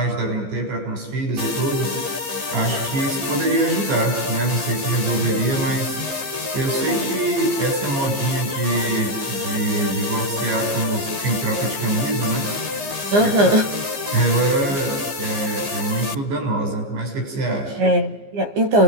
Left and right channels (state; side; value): late; left; 15 ms